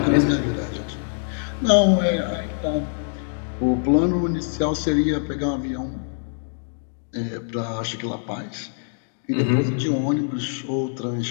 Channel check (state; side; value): silent; right; digital silence